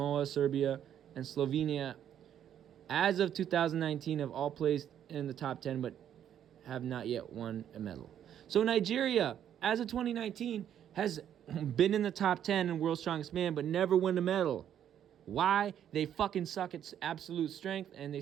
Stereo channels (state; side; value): quieter; left; 9.9 dB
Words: Serbia, and Slovenia, as of 2019, have all placed in the top 10 but have not yet won a medal. So Nigeria, as of 2019, has been in the top 10 in World's Strongest Man but never won a medal. Why? They fucking suck at absolute strength and they